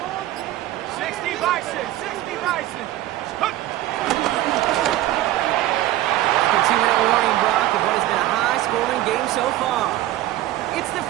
60 Bison, 60 Bison. A 2-minute warning, Brock, of what has been a high-scoring game so far. It's the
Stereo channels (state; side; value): quieter; left; 14.8 dB